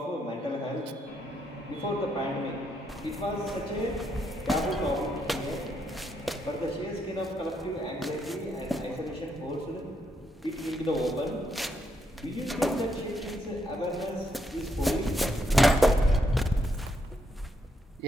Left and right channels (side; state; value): both; normal; correlation 0.78